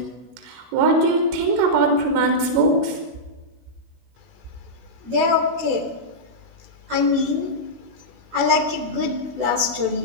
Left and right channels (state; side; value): late; left; 16 ms